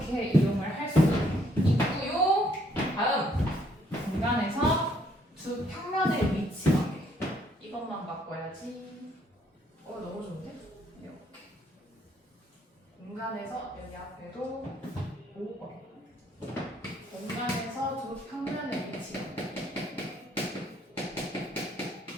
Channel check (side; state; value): both; normal; correlation 0.67